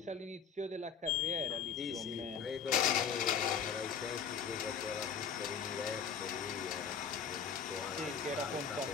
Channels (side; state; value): right; quieter; 7.0 dB